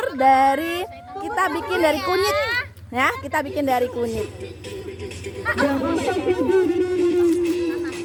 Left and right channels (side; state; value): both; identical; correlation 1.00